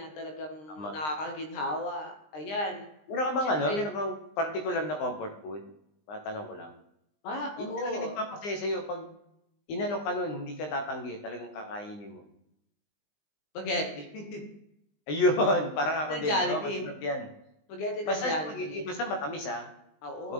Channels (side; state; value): right; late; 20 ms